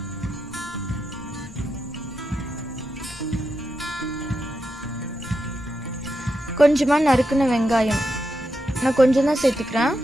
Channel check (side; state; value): both; normal; correlation 0.86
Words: கொஞ்சமாக நறுக்குன வெங்காயம், நான் கொஞ்சம் தான் சேர்த்துக்கிறேன்,